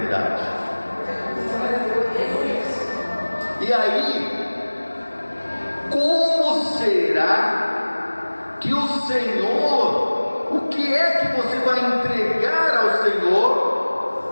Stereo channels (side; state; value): both; inverted; correlation -1.00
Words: E aí, como será que o Senhor, o que é que você vai entregar ao